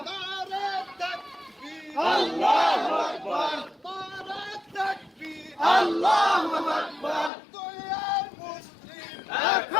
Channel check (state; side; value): drops out; right; at 7.3 s